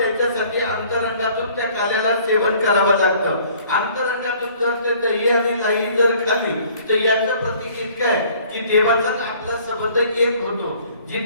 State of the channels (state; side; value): inverted; both; correlation -0.55